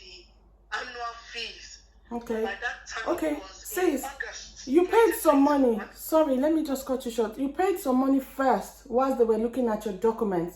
annual fees. Okay. By that time it was in August. You paid some money. Sorry, let me just cut you short. You paid some money first whilst they were looking at your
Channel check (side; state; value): both; identical; correlation 1.00